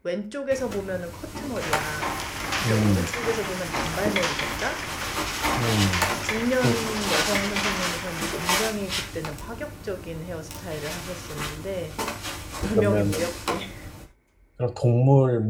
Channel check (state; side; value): identical; both; correlation 1.00